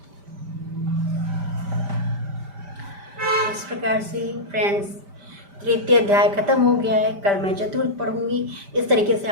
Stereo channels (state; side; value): late; left; 5.0 ms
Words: इस प्रकार से फ्रेंड्स तृतीय अध्याय खत्म हो गया है। कल मैं चतुर्थ पढ़ूंगी। इस तरीके से